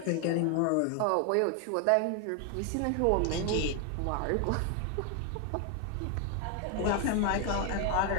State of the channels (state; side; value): different; both; correlation 0.01